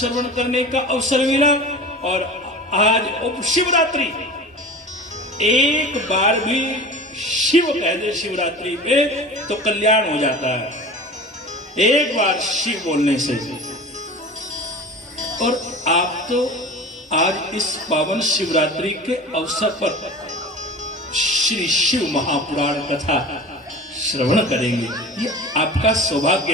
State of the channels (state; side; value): normal; both; correlation 0.35